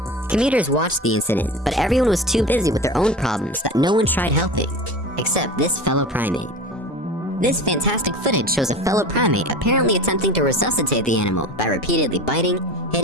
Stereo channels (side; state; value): both; normal; correlation 0.32